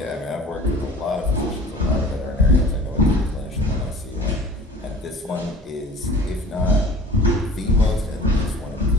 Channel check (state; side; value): normal; both; correlation 0.44